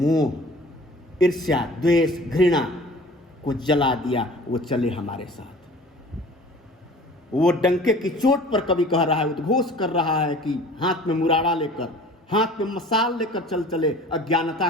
ईर्ष्या, द्वेष, घृणा को जला दिया। वो चले हमारे साथ। वो डंके की चोट पर कवि कह रहा है, उद्घोष कर रहा है कि हाथ में मुराड़ा लेकर, हाथ में मसाल लेकर चल चले अज्ञानता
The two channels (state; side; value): normal; both; correlation 0.46